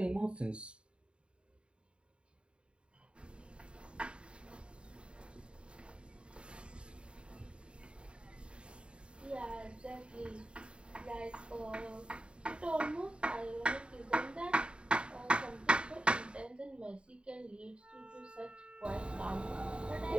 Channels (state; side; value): late; left; 0.054 ms